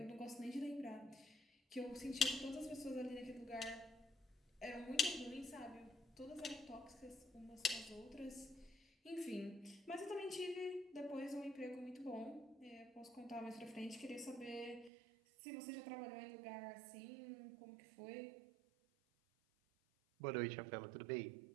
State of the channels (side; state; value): left; drops out; at 14.9 s